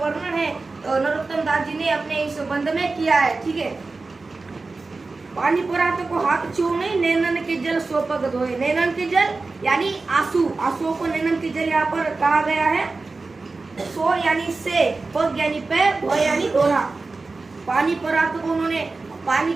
है नरोत्तम दास जी ने अपने इस बंध में किया है। ठीक है, पानी परात को हाथ छू नहीं, नैनन के जल सो पग धोए। नैनन के जल यानी आंसू, आंसुओं को नैनन के जल यहाँ पर कहा गया है। सो यानी से, पग यानी पैर, धोए यानी धोना। पानी परात को उन्होंने पानी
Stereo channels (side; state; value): left; quieter; 3.7 dB